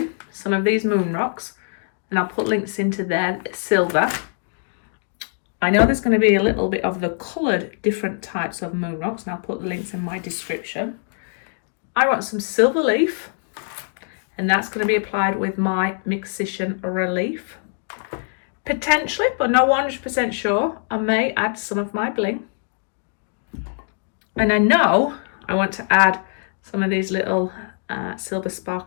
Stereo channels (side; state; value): right; silent; digital silence